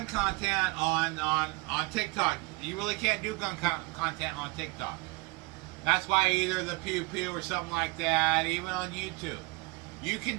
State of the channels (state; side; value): quieter; left; 24.4 dB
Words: content on TikTok. You really can't do gun content on TikTok. That's why either the Pew Pew or something like that, even on YouTube. You